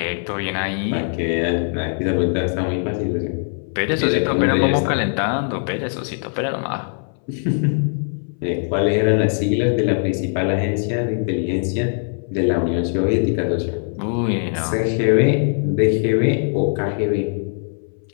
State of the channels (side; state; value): right; silent; 63 dB below the other